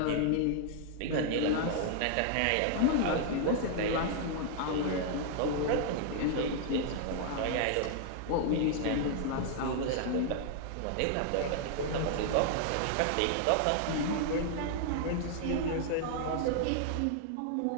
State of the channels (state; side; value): different; both; correlation 0.00